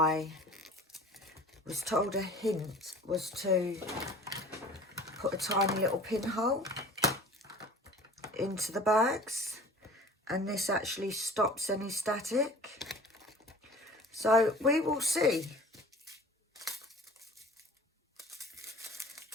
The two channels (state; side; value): normal; both; correlation 0.45